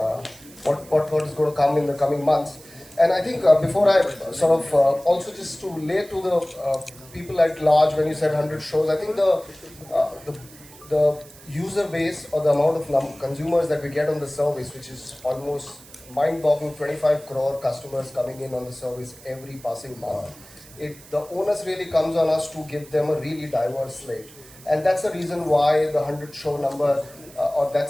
to come in the coming months. And I think before I sort of also just to lay to the people at large, when you said 100 shows, I think the user base or the amount of consumers that we get on the service, which is almost mind-boggling, 25 crore customers coming in on the service every passing month. The onus really comes on us to give them a really diverse slate. And that's the reason why the 100 show number, or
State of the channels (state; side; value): noise; right; hiss, 21 dB below the sound